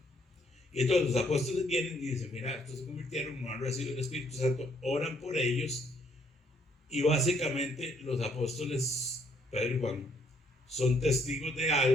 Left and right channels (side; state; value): both; normal; correlation 0.68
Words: Y entonces los apóstoles vienen y dicen, mira, estos se convirtieron, no han recibido el Espíritu Santo, oran por ellos. Y básicamente los apóstoles Pedro y Juan son testigos de